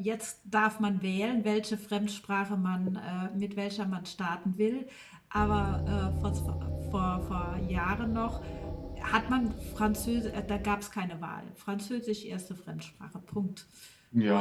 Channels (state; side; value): identical; both; correlation 1.00